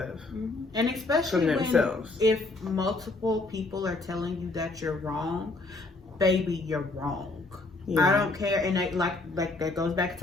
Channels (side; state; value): right; quieter; 3.2 dB